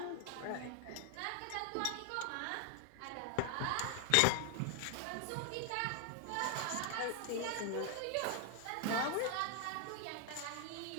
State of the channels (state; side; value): different; both; correlation 0.00